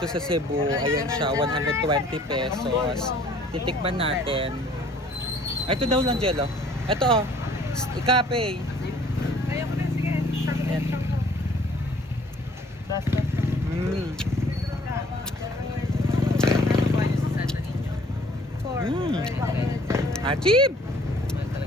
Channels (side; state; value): both; normal; correlation 0.56